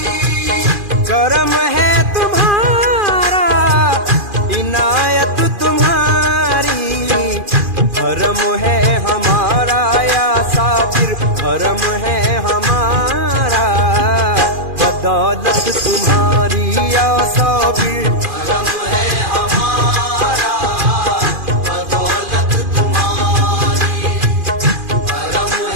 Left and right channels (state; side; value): late; left; 2.4 ms